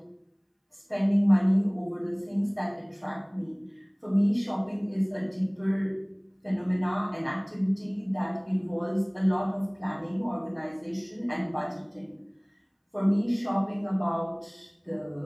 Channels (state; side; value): identical; both; correlation 1.00